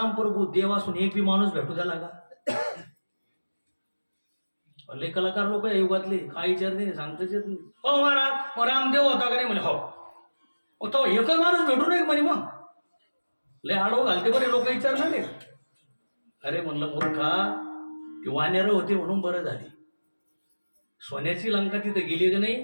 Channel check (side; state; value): both; inverted; correlation -1.00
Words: प्रभू देव असून एक बी माणूस भेटू द्याला का? लय कलाकार लोक आहे युगातले, काय विचारते नाही, सांगताच येत नाही. हो महाराज मग रामदेव होता का नाही म्हणे. हो तो एकच माणूस भेटू नये म्हणे. मग लय आडव घालते बरे लोक विचारणार नाही. अरे म्हणलं मूर्खा, ती वानेर होती म्हणून बरं झाली. सोन्याची लंका तिथं गेली का नाही,